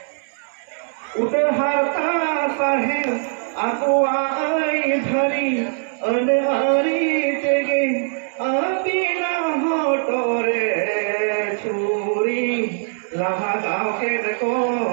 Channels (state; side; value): silent; left; 65 dB below the other